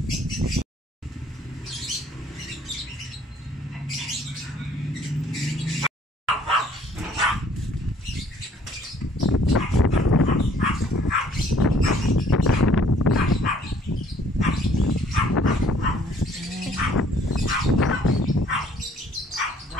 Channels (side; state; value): both; normal; correlation 0.60